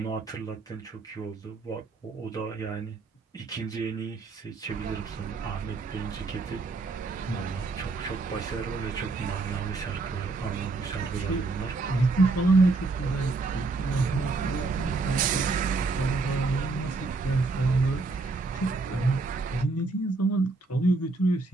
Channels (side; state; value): left; quieter; 3.7 dB